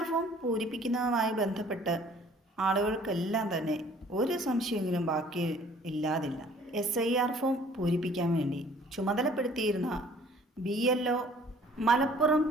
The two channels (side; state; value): both; normal; correlation 0.54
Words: form പൂരിപ്പിക്കുന്നതുമായി ബന്ധപ്പെട്ട് ആളുകൾക്കെല്ലാം തന്നെ ഒരു സംശയമെങ്കിലും ബാക്കി ഇല്ലാതില്ല. SIR ഫോം പൂരിപ്പിക്കാൻ വേണ്ടി ചുമതലപ്പെടുത്തിയിരുന്ന BLO മലപ്പുറം